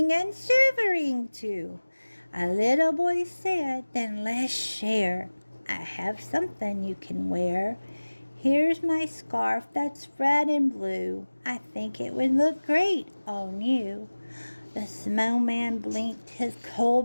and shivering too. A little boy said, then let's share. I have something you can wear. Here's my scarf that's red and blue. I think it would look great on you. The snowman blinked his coal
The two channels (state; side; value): inverted; both; correlation -1.00